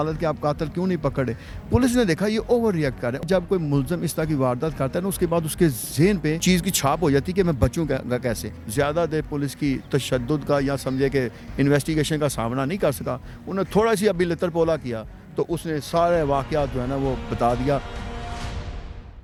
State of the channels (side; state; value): both; identical; correlation 1.00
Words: کے آپ قاتل کیوں نہیں پکڑے۔ پولیس نے دیکھا یہ اوور ریئیکٹ کر رہا ہے۔ جب کوئی ملزم اس طرح کی واردات کرتا ہے نا، اس کے بعد اس کے ذہن پہ چیز کی چھاپ ہو جاتی ہے کہ میں بچوں گا کیسے۔ زیادہ دیر پولیس کی تشدد کا یا سمجھے کہ انویسٹیگیشن کا سامنا نہیں کر سکا، انہوں نے تھوڑا سی ابھی لتر پولا کیا تو اس نے سارے واقعات جو ہے نا وہ بتا دیا۔